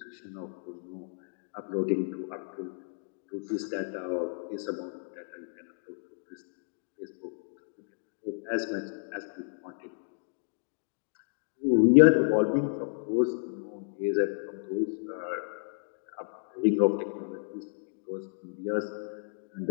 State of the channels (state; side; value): silent; right; digital silence